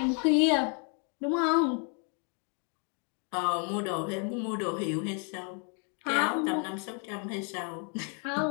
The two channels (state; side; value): quieter; right; 39.6 dB